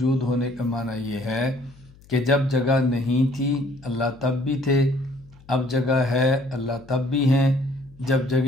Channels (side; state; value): left; noise; hum, 25 dB below the sound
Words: ہونے کا معنی یہ ہے کہ جب جگہ نہیں تھی اللہ تب بھی تھے، اب جگہ ہے اللہ تب بھی ہیں، جب